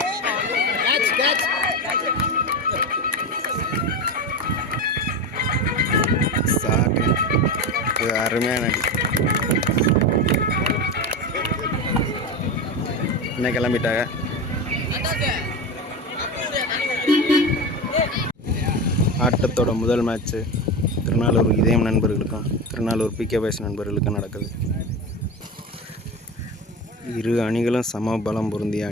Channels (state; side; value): normal; both; correlation 0.22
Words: அருமையான அடி. என்ன கிளம்பிட்டாங்க. ஆட்டத்தோட முதல் மேட்ச்சு திருநாளூர் இதயம் நண்பர்களுக்கும் திருநாளூர் பிகே பாய்ஸ் நண்பர்களுக்கும் நடக்குது. இரு அணிகளும் சம பலம் பொருந்திய